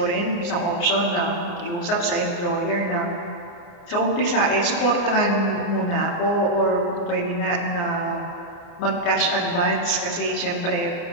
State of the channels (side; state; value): right; late; 29 ms